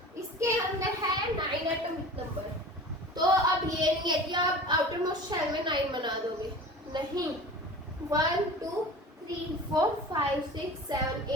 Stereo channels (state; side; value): normal; both; correlation 0.38